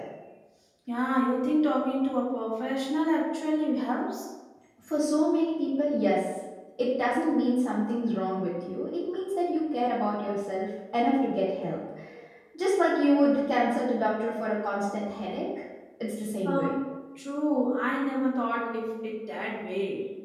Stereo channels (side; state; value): both; identical; correlation 1.00